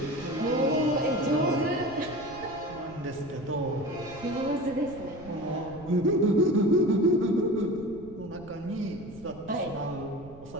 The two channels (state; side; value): noise; right; rumble, 19 dB below the sound